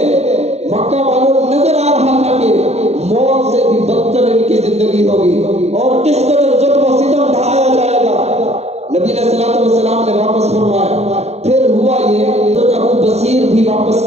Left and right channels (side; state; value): left; late; 0.31 ms